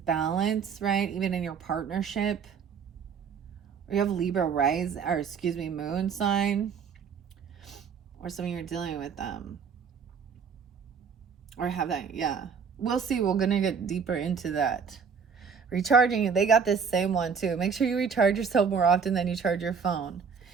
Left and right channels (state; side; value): quieter; left; 6.2 dB